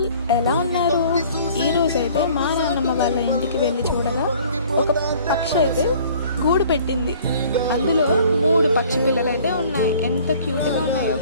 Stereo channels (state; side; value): inverted; both; correlation -0.52